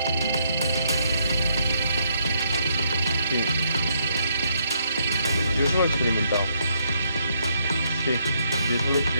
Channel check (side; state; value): both; inverted; correlation -0.74